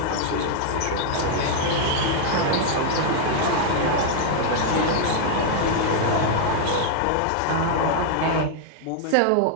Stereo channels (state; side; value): different; both; correlation -0.01